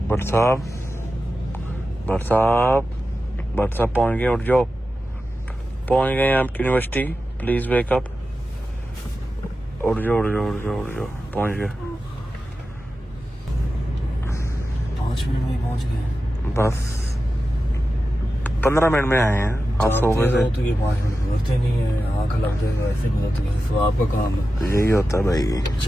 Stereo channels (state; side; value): normal; both; correlation 0.92